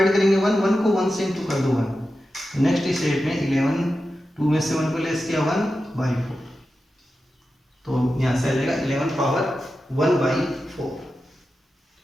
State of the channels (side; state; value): both; normal; correlation 0.91